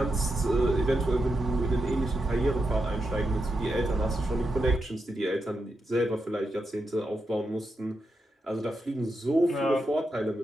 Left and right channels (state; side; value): normal; both; correlation 0.86